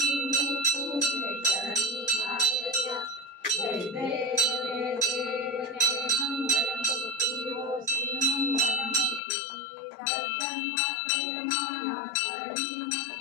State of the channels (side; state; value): right; drops out; at 9.2 s